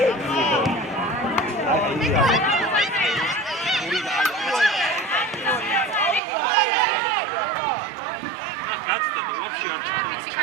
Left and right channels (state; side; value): drops out; left; at 6.2 s